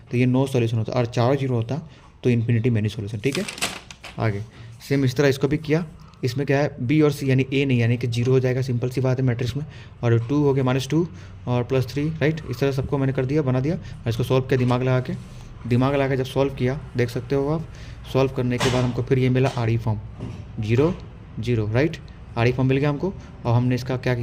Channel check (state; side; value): identical; both; correlation 1.00